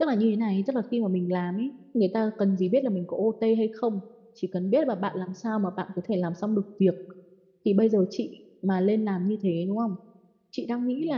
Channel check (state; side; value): identical; both; correlation 1.00